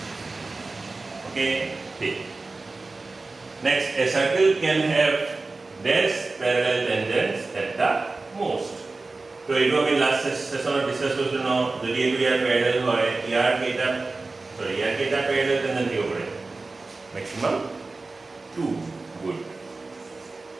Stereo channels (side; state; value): left; quieter; 3.5 dB